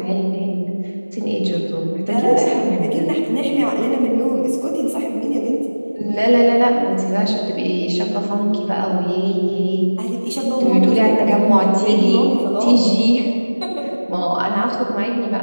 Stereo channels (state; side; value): inverted; both; correlation -1.00